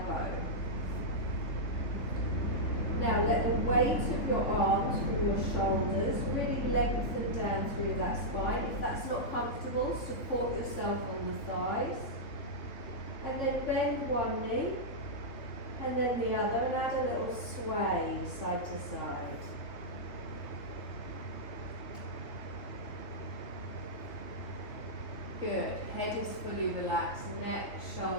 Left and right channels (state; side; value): late; right; 3.4 ms